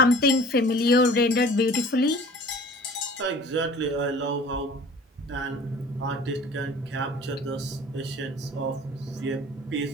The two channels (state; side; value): normal; both; correlation 0.45